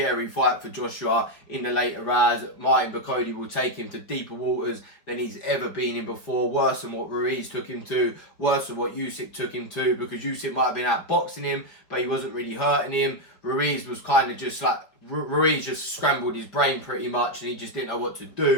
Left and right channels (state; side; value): late; right; 5.0 ms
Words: fight for Joshua in the later rounds. Martin Bakole will take him to deeper waters than he's ever been in before, worse than what Ruiz took him to, worse than what Usyk took him to, because Usyk might have been outboxing him, but he wasn't really hurting him. Ruiz was kind of just like, Ruiz just scrambled his brain pretty much, and he just didn't know what to